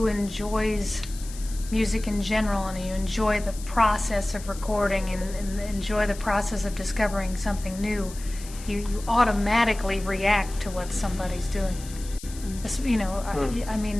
enjoys music in general, and you enjoy the process of recording and enjoy the process of discovering something new, you automatically react to what somebody's doing. You know, I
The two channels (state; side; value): noise; left; hiss, 16 dB below the sound